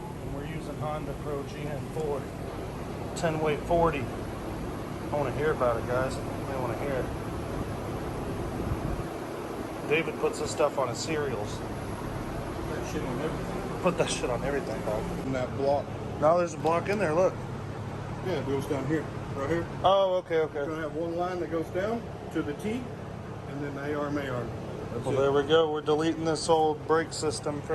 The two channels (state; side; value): identical; both; correlation 1.00